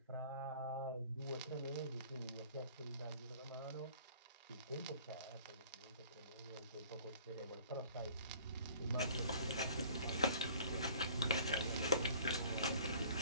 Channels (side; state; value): both; inverted; correlation -0.51